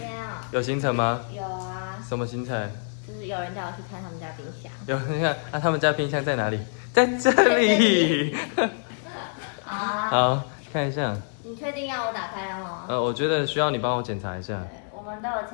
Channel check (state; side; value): silent; right; digital silence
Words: 啊，有行程吗？有啊，什么行程？就是有人叫我去看他们家冰箱。有，你看，啊，他们家冰箱在哪里？在这里。好啊，好，看一下。你确定要我打开了吗？我觉得需要你帮我检查一下。对，我们都有